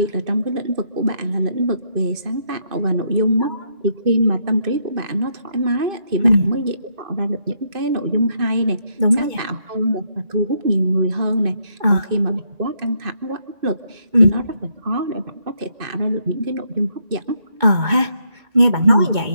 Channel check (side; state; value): left; late; 2.2 ms